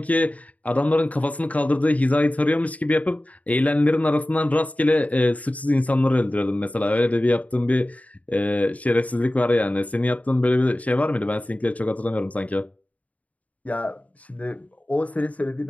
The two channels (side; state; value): right; late; 0.070 ms